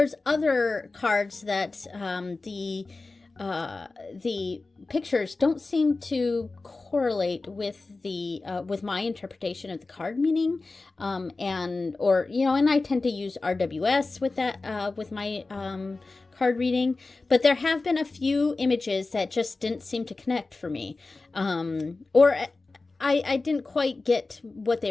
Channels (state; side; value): quieter; right; 3.5 dB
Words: other cards that the pictures don't seem to correlate with with my interpretation of the card meaning, and I tend to use RWS with that with my card reading, but there have been a few images that just didn't seem to connect for me, or I didn't quite get what